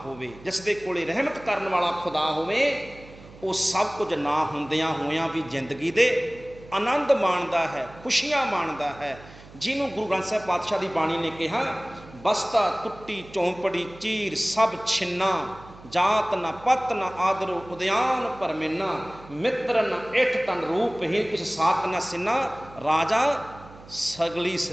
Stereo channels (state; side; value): noise; right; hum, 20 dB below the sound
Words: ਹੋਵੇ, ਜਿਸ ਦੇ ਕੋਲੇ ਰਹਿਮਤ ਕਰਨ ਵਾਲਾ ਖੁਦਾ ਹੋਵੇ, ਉਹ ਸਭ ਕੁਝ ਨਾ ਹੁੰਦਿਆਂ ਹੋਇਆਂ ਵੀ ਜ਼ਿੰਦਗੀ ਦੇ ਆਨੰਦ ਮਾਣਦਾ ਹੈ, ਖੁਸ਼ੀਆਂ ਮਾਣਦਾ ਹੈ। ਜਿਹਨੂੰ ਗੁਰੂ ਗ੍ਰੰਥ ਸਾਹਿਬ ਪਾਤਸ਼ਾਹ ਦੀ ਬਾਣੀ ਨੇ ਕਿਹਾ, ਬਸਤਾ ਟੁੱਟੀ ਚੌਂਪੜੀ ਚੀਰ ਸਭ ਛਿੰਨਾ, ਜਾਤ ਨਾ ਪਤ ਨਾ ਆਦਰੋ ਉਦਿਆਨ ਪਰਮੇਨਾ, ਮਿੱਤਰ ਨਾ ਇਠ ਤਨ ਰੂਪਹੀਨ ਕਿਸ ਸਾਤ ਨਾ ਸਿੰਨਾ, ਰਾਜਾ ਸਗਲੀ